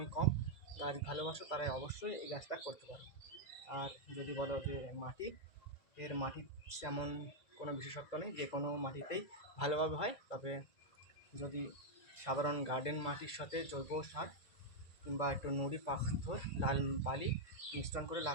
কম, গাছ ভালোবাসো, তারাই অবশ্যই এই গাছটা করতে পারো। আর যদি বলো যে মাটি, এর মাটি তেমন কোনো বিশেষত্ব নেই, যে কোনো মাটিতেই ভালোভাবে হয়। তবে যদি সাধারণ গার্ডেন মাটির সাথে জৈব সার কিংবা একটু নুড়ি পাথর, লাল বালি মিশ্রণ করে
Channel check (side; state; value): right; late; 2.0 ms